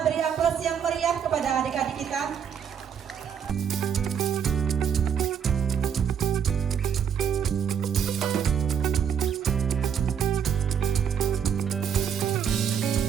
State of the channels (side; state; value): left; quieter; 8.0 dB